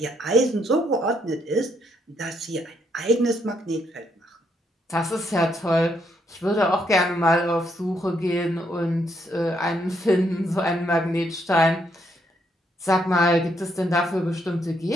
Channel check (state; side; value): normal; both; correlation 0.74